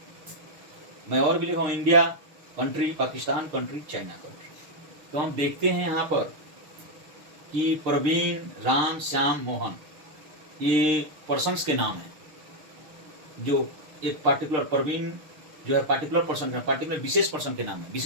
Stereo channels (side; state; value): left; late; 6.6 ms